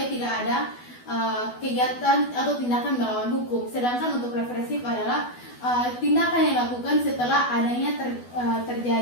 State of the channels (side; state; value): right; late; 12 ms